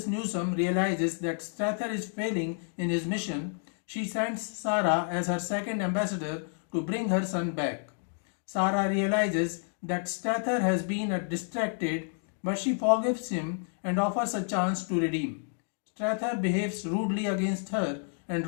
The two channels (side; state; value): right; silent; 58 dB below the other